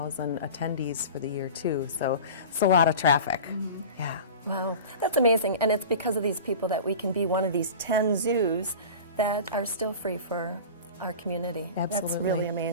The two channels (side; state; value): both; inverted; correlation -0.35